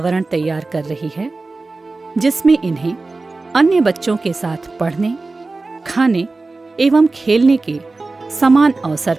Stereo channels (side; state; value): left; quieter; 3.5 dB